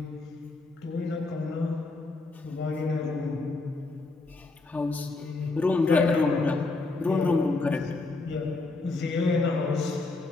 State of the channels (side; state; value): right; quieter; 3.4 dB